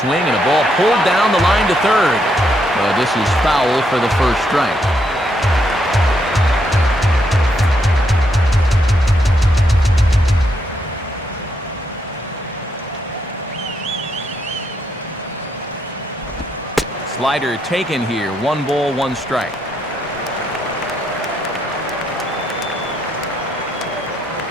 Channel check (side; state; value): both; normal; correlation 0.77